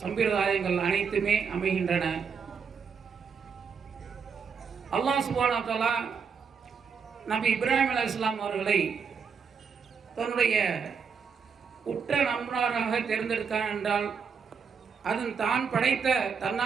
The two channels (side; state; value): left; quieter; 6.1 dB